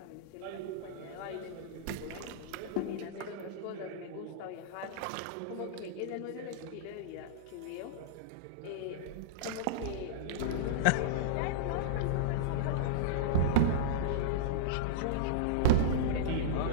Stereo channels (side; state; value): both; different; correlation -0.03